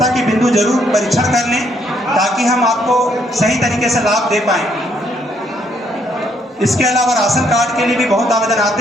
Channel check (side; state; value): both; normal; correlation 0.71